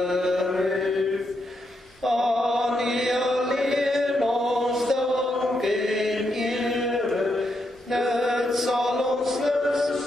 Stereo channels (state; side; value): normal; both; correlation 0.81